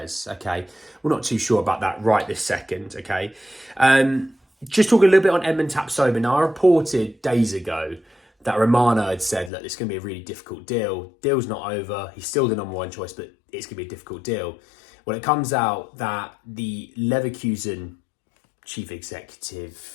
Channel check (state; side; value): drops out; right; at 9.5 s